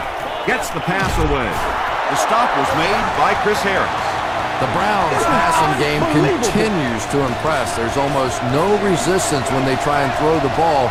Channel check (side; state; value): both; identical; correlation 1.00